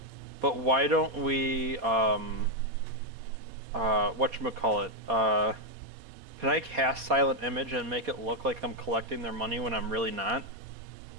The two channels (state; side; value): late; left; 4.2 ms